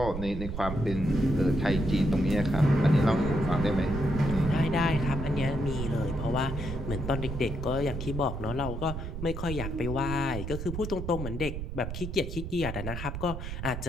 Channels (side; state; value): right; noise; rumble, 6 dB below the sound